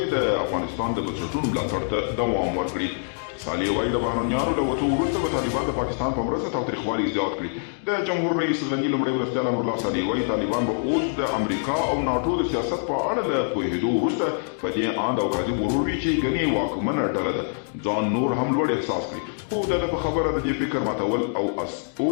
د افغانستان د بنسټونو ملاتړ ته دوام ورکړي. صالح وایي د بهرنیانو له وتو وروسته به طالبان د پاکستان په مرسته تاوتریخوالي زیات کړي. د جمهور رئیس غني لومړی مرستیال امرالله صالح وایي طالبان به اوس د امریکا او ناټو د سیاست په اړه له پوهېدو وروسته په دې اند او کاذب غرور وي چې ګنې واکمنه ډله ده ځان نور هم لوړ احساس کړي. خو د په خبره د دې فکر ماتول او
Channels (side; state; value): right; silent; digital silence